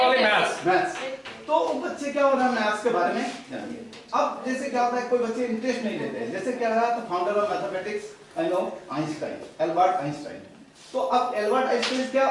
maths. तो बच्चे क्या हो रहा है मैथ्स के बारे में जानिए। अब जैसे क्या होता है कोई बच्चे इंटरेस्ट नहीं लेते हैं, जैसे क्या रहा तो founder of mathematics I know Einstein, Albert Einstein. तो अब एल्बर्ट आइंस्टाइन क्या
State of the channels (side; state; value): both; identical; correlation 1.00